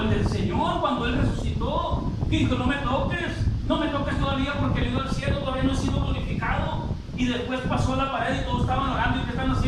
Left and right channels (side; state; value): both; identical; correlation 1.00